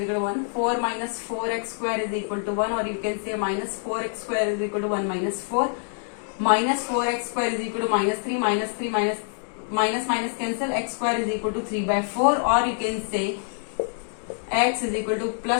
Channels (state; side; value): silent; right; 61 dB below the other